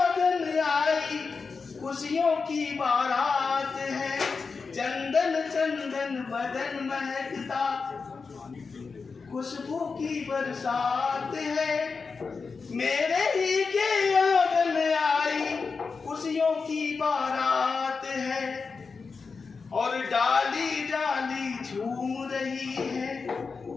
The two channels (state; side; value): quieter; right; 4.8 dB